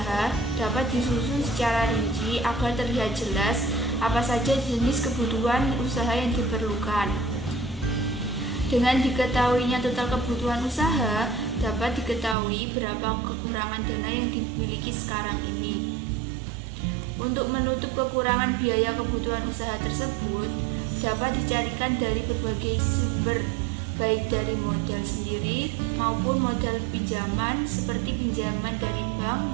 dapat disusun secara rinci agar terlihat jelas apa saja jenis kebutuhan usaha yang diperlukan. Dengan diketahuinya total kebutuhan usaha, dapat diketahui berapa kekurangan dana yang dimiliki sekarang ini. Untuk menutup kekurangan biaya kebutuhan usaha tersebut, dapat dicarikan dari berbagai sumber, baik dari modal sendiri maupun modal pinjaman seperti pinjaman dari bank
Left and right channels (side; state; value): left; drops out; at 12.4 s